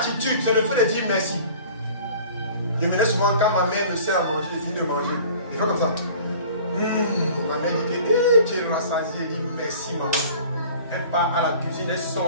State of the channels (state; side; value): inverted; both; correlation -0.46